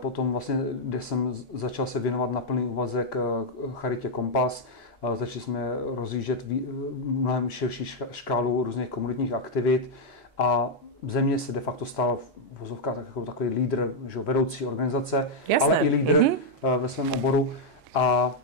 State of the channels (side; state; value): both; normal; correlation -0.02